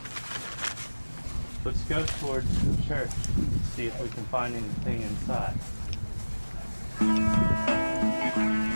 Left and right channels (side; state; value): both; inverted; correlation -1.00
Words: Let's go towards the church, see if we can find anything inside.